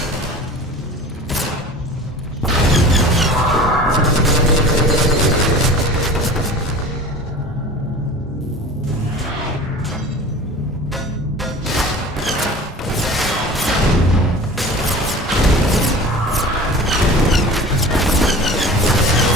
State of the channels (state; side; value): normal; both; correlation 0.39